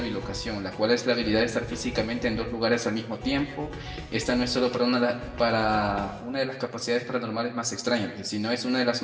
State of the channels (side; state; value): both; identical; correlation 1.00